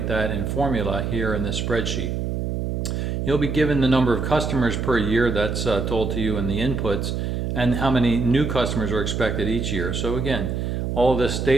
that in formula here in this spreadsheet. You'll be given the number of customers per year, that's told to you in the inputs, and how many new customers are expected each year. So again, all this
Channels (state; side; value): noise; right; hum, 2 dB below the sound